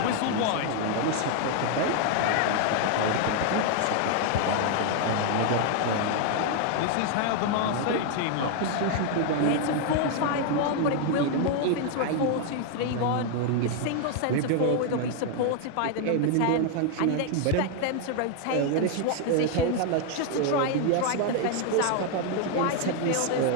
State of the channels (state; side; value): different; both; correlation 0.00